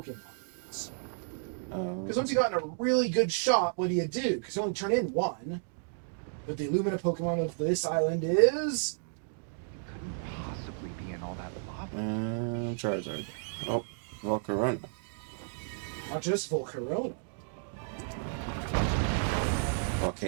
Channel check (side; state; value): left; silent; digital silence